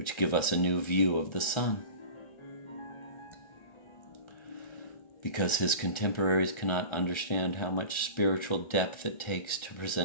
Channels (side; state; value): right; late; 1.3 ms